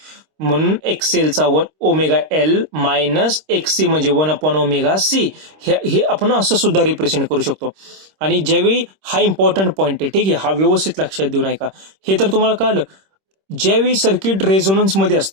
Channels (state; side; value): late; left; 26 ms